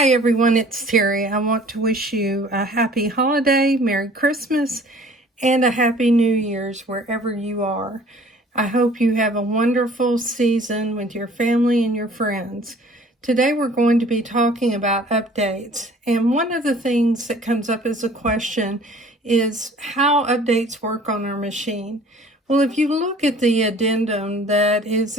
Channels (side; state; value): both; normal; correlation 0.51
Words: everyone, it's Terry. I want to wish you a happy holiday, Merry Christmas, and a Happy New Year's wherever you are. I hope you have a wonderful season with your family and your friends. Today we're going to be talking about updates, and one of the things that comes up as a question is how updates work on our machine. Well, if you look at the addendum that is